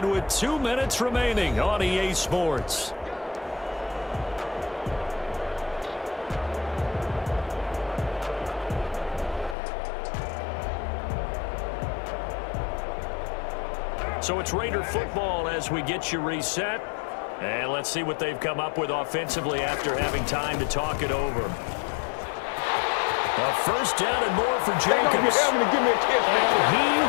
with 2 minutes remaining on EA Sports. So it's Raider football as we get you reset. And let's see what they've come up with offensively after having time to talk it over. A first down and more for Jacobs. And he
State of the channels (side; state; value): right; drops out; at 9.6 s